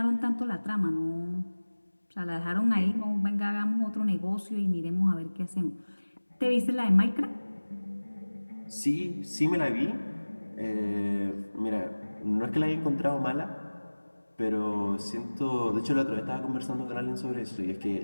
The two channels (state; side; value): inverted; both; correlation -1.00